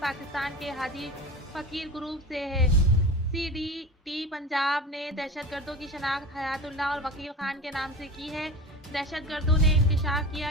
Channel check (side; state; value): both; normal; correlation 0.32